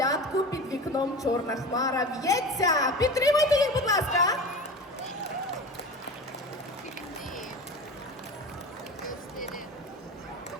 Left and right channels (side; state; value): both; normal; correlation 0.31